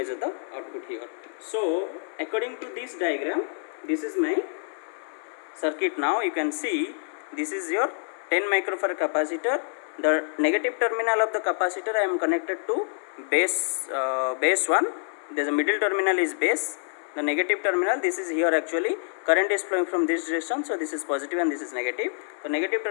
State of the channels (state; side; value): silent; right; digital silence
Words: the output here. So according to this diagram, this is my circuit. Now you can see this is your 10 microfarad capacitor. The negative terminal of the capacitor I am connected to base 1. There is a middle terminal is base. The negative terminal, this is here actually current is flowing from this direction, so this is positive and this is negative. The negative